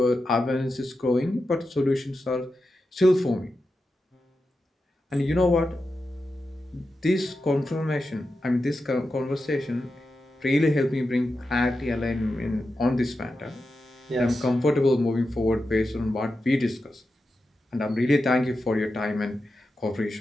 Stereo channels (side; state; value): both; normal; correlation 0.90